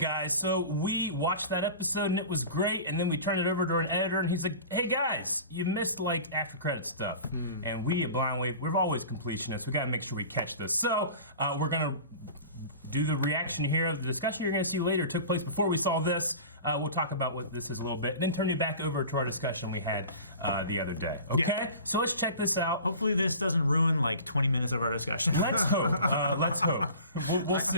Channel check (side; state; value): both; inverted; correlation -0.38